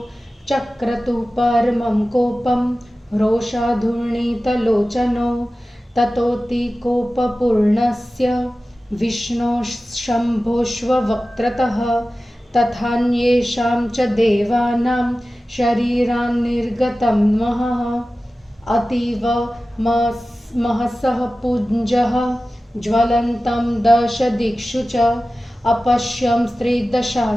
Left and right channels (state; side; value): normal; both; correlation 0.95